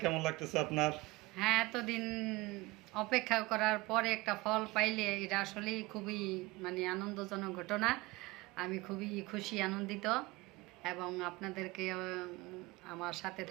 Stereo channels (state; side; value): quieter; left; 21.4 dB